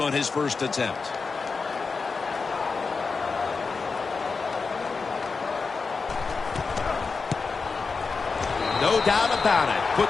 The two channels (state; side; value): quieter; right; 4.7 dB